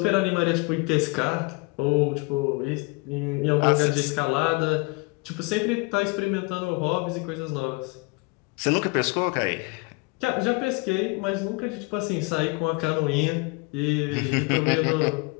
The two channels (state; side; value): quieter; right; 28.5 dB